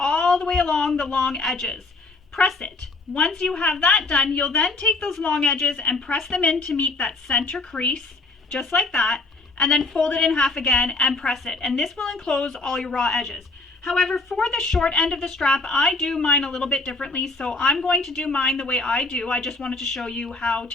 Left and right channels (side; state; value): right; quieter; 3.3 dB